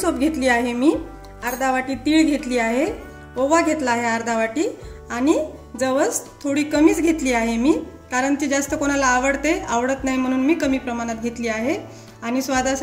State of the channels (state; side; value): identical; both; correlation 1.00